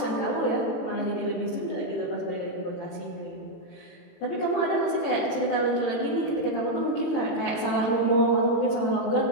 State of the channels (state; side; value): late; right; 18 ms